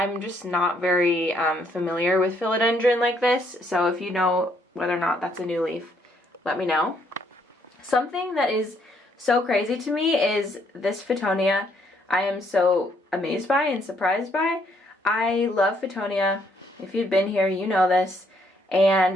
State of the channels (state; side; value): normal; both; correlation 0.70